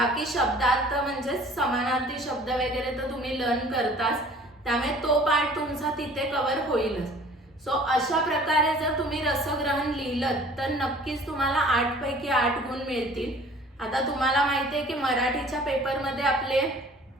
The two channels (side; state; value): both; normal; correlation 0.50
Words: शब्दार्थ म्हणजे समानार्थी शब्द वगैरे तर तुम्ही लर्न करताच, त्यामुळे तो पार्ट तुमचा तिथे कव्हर होईलच. सो अशा प्रकारे जर तुम्ही रसग्रहण लिहिलं तर नक्कीच तुम्हाला 8 पैकी 8 गुण मिळतील. आता तुम्हाला माहिती आहे की मराठीच्या पेपरमध्ये आपले